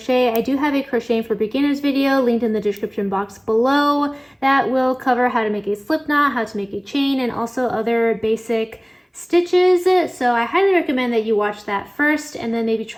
I do have a crocheting for beginners video linked in the description box below that will cover how to make a slip knot, how to make a chain, and also other basic stitches. So I highly recommend that you watch that first and then maybe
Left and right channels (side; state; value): both; identical; correlation 1.00